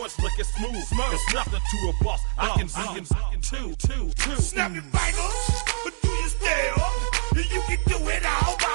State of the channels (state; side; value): silent; left; digital silence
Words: it's looking smooth. It's nothing to a boss. I can two. Snap your fingers, but do you still? You can do it all